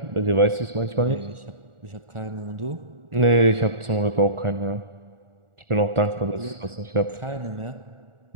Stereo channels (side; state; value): left; late; 1.4 ms